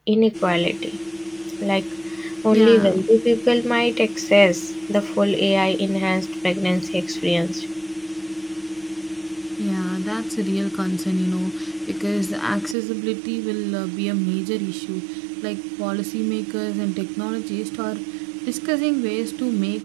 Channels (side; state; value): left; drops out; at 12.8 s